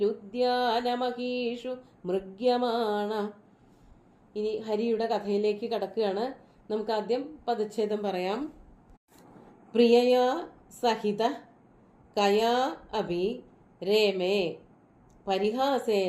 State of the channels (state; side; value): identical; both; correlation 1.00